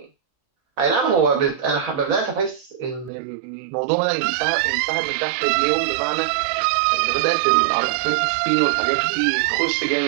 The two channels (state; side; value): drops out; left; at 3.1 s